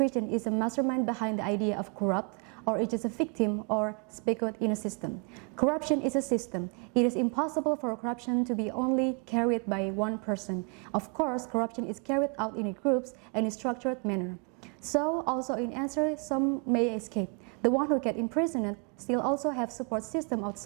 is a mastermind behind the idea of corrupt, or it is a victim or speculate in a system. Corruption is a system. It is impossible for corruption to be only carried by one person. Of course, corruption is carried out in groups and in a structured manner. So, also in answer, some may escape. The one who get imprisoned still also have support system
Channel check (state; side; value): quieter; left; 36.1 dB